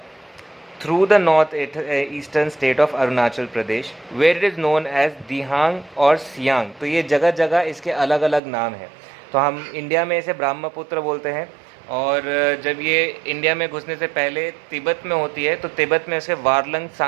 through the north-eastern state of Arunachal Pradesh, where it is known as दिहांग और सियांग। तो ये जगह जगह इसके अलग अलग नाम हैं। तो हम इंडिया में इसे ब्रह्मपुत्र बोलते हैं, और जब ये इंडिया में घुसने से पहले तिब्बत में होती है तो तिब्बत में इसे वारलंग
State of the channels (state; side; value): drops out; left; at 8.4 s